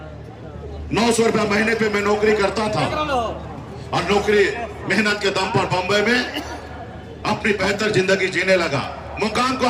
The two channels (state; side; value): identical; both; correlation 1.00